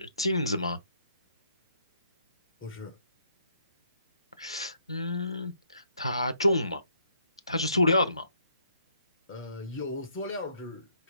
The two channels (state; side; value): inverted; both; correlation -0.69